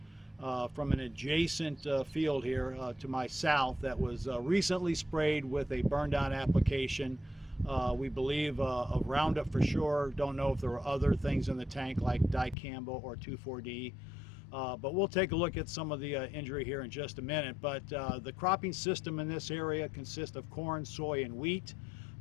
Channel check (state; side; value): drops out; right; at 12.6 s